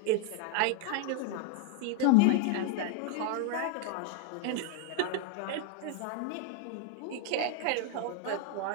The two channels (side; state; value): both; different; correlation 0.00